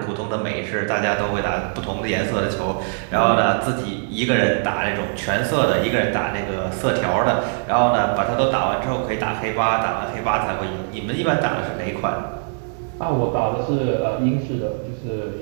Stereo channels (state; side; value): silent; left; 61 dB below the other